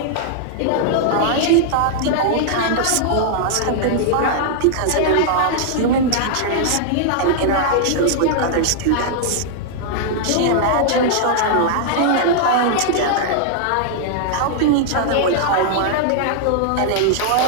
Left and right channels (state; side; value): different; both; correlation -0.01